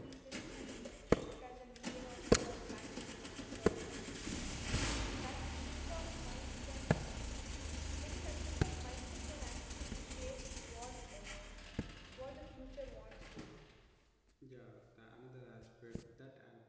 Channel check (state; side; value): identical; both; correlation 1.00